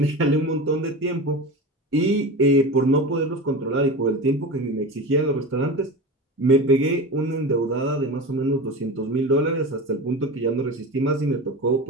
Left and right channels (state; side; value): normal; both; correlation 0.28